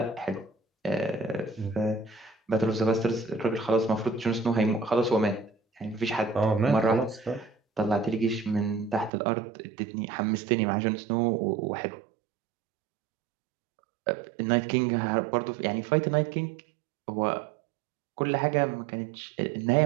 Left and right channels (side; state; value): left; drops out; at 9.1 s